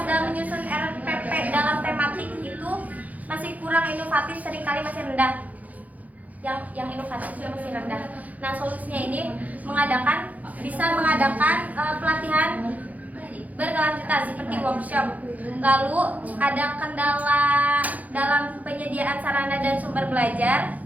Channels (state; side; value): late; left; 0.077 ms